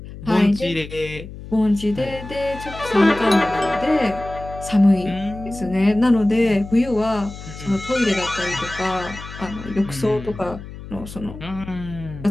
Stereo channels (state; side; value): noise; left; hum, 13 dB below the sound